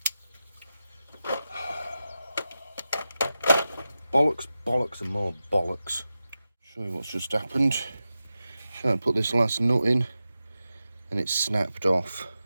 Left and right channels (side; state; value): both; inverted; correlation -0.92